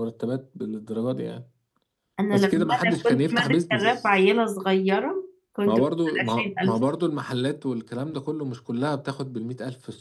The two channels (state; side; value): identical; both; correlation 1.00